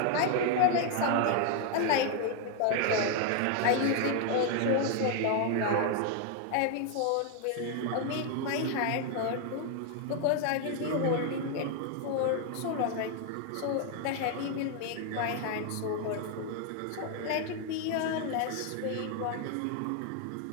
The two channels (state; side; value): different; both; correlation 0.00